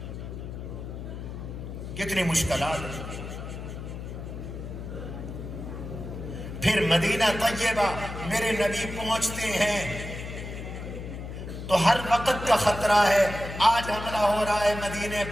کتنی مشکلات۔ پھر مدینہ طیبہ میرے نبی پہنچتے ہیں تو ہر وقت کا خطرہ ہے، آج حملہ ہو رہا ہے مدینے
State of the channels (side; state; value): left; noise; hum, 8 dB below the sound